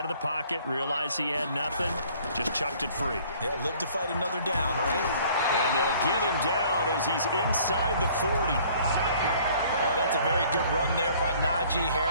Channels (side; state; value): both; inverted; correlation -0.56